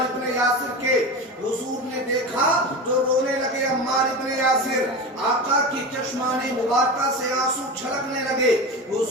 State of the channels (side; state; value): both; normal; correlation 0.26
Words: ابن یاسر کے. حضور نے دیکھا تو رونے لگے عمار ابن یاسر، آقا کی چشمان مبارکہ سے آنسو چھلکنے لگے.